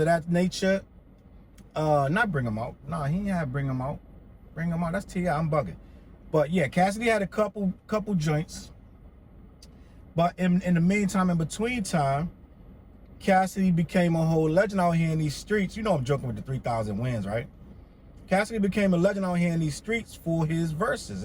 that nature. Not Bring 'Em Out. No, he didn't have Bring 'Em Out. Bring 'Em Out, that's T.H.E, I'm bugging. But yeah, Cassidy had a couple joints. But in the meantime, in between time, Cassidy became a whole legend out here in these streets. You know I'm joking with the 3,000 wins, right? Cassidy became a legend out here in these streets for his verses,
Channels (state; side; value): identical; both; correlation 1.00